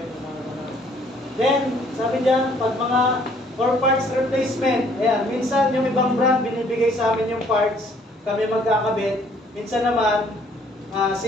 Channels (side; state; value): both; normal; correlation 0.61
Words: Then, sabi diyan, pag mga for parts replacement, ayan, minsan yung ibang brand binibigay sa amin yung parts, kami magkakabit. Minsan naman,